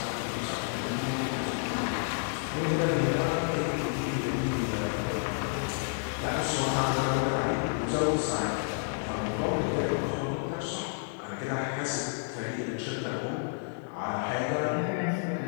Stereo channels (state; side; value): silent; right; digital silence